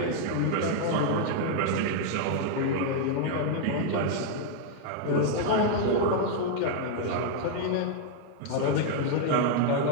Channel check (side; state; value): both; different; correlation -0.01